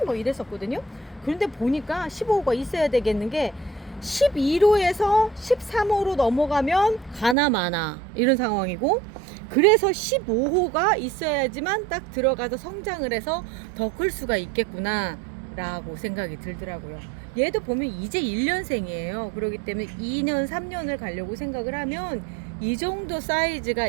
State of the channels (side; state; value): left; drops out; at 7.4 s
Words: 뭐 이랬었거든요. 그런데 보니까 15호가 있어야 되겠는 게 11호에서 13호로 넘어가면 가나 마나 이런 상황이고, 그래서 15호가 있어야지만 딱 들어가서 성장을 해서 더 클 수가 있겠구나 라고 생각이 들더라고요. 얘도 보면 이제 1년생이에요. 그렇기 때문에 2년 3년을 가려고 생각을 하면 이 정도 사이즈가